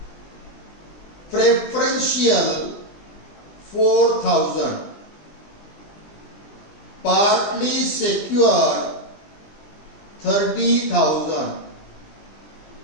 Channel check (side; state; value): right; late; 20 ms